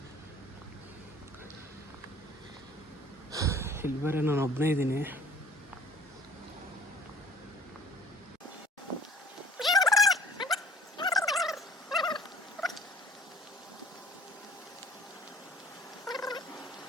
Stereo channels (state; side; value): normal; both; correlation 0.50